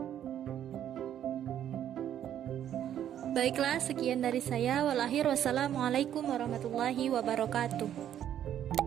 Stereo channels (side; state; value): left; quieter; 10.5 dB